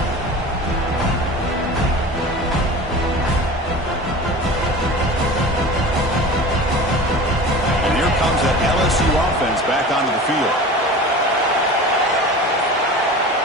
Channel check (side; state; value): both; normal; correlation 0.36